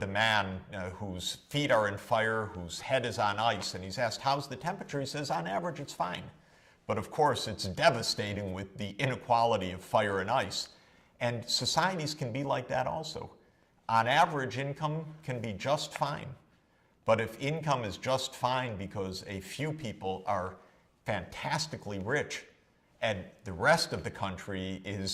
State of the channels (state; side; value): identical; both; correlation 1.00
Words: the man whose feet are in fire, whose head is on ice, and he's asked, "How's the temperature?" He says, "On average, it's fine." But of course, it's devastating with the inequality of fire and ice. And societies can be like that also. On average, income can be just fine. But if income is just fine because a few people are fantastically rich and the rest of the country